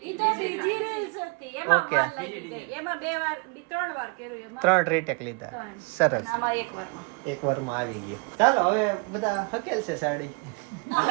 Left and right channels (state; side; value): quieter; left; 32.2 dB